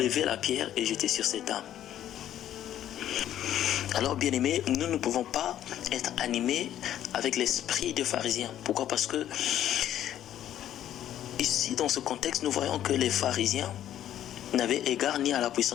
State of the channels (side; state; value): right; quieter; 11.4 dB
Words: la pierre et jeter sur cette dame. Alors, bien-aimés, nous ne pouvons pas être animés avec l'esprit des pharisiens. Pourquoi? Parce que ici, dans ce contexte, nous voyons que les pharisiens n'avaient égard ni à la